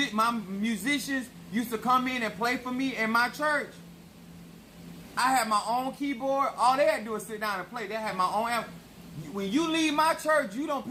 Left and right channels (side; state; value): both; identical; correlation 1.00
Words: used to come in and play for me in my church, I had my own keyboard. All they had to do was sit down and play. They had my own amp. When you leave my church, you don't